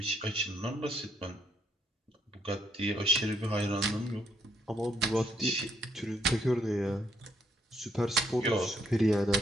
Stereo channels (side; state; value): both; normal; correlation 0.72